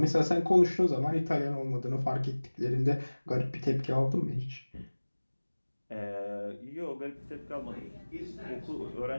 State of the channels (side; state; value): both; inverted; correlation -1.00